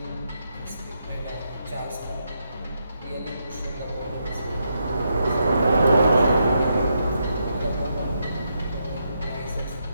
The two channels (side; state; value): both; inverted; correlation -0.81